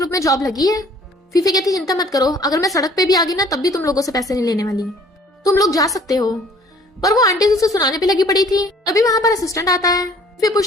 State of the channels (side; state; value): both; normal; correlation 0.56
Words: में जॉब लगी है। फीफे कहती चिंता मत करो, अगर मैं सड़क पे भी आ गई ना तब भी तुम लोगों से पैसे नहीं लेने वाली, तुम लोग जा सकते हो। पर वो आंटी उसे सुनाने पे लगी पड़ी थी, तभी वहां पर असिस्टेंट आता है। फिर